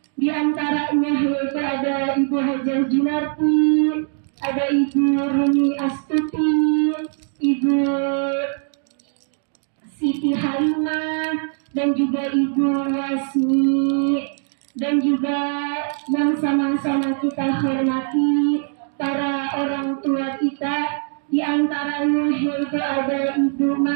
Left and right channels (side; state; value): left; silent; 57 dB below the other